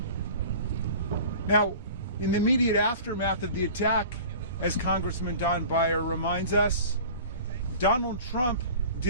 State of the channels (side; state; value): both; inverted; correlation -0.41